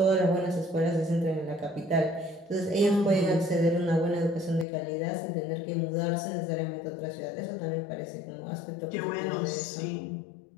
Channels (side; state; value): right; drops out; at 4.7 s